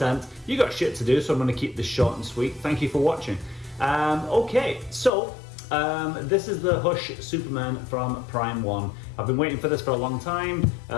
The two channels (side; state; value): right; drops out; at 5.1 s